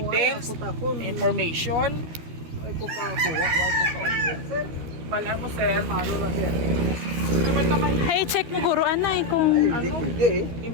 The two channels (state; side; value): late; left; 13 ms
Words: Takon. information. Oy, ko ka kuha, oy ko ka order. Sir, Bala mo sir, malo na sir. naman naman Hey, check mo guro anay kung Ay, hindi Ano? pwede eh.